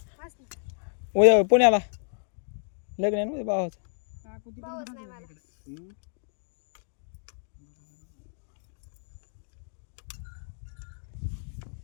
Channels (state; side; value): silent; right; digital silence